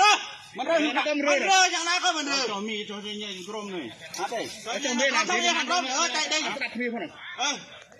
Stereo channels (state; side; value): identical; both; correlation 1.00